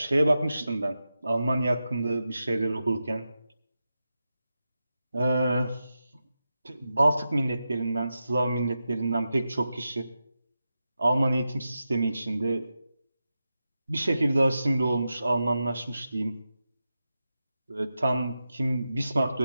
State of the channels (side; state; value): both; inverted; correlation -0.90